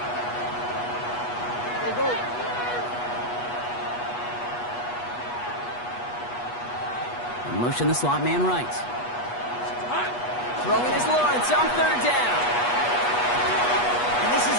Go. Motion the slot man right. Throwing is Lawrence on 3rd down. And this is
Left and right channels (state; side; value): late; right; 8.3 ms